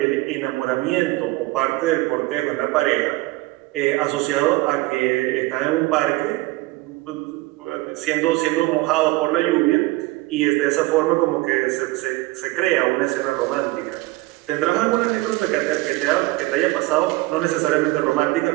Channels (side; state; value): left; quieter; 20.3 dB